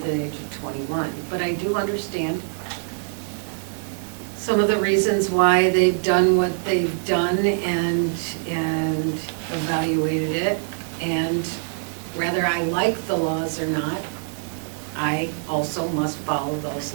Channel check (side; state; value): left; silent; digital silence